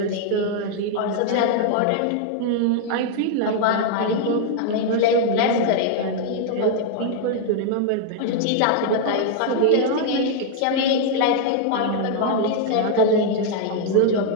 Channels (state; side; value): different; both; correlation 0.00